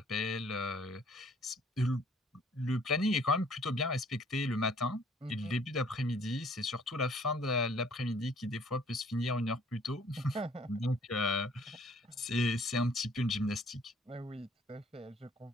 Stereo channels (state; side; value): normal; both; correlation 0.59